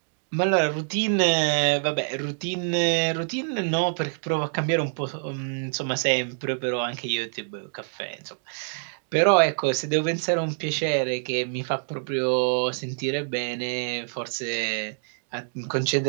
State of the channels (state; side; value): silent; left; digital silence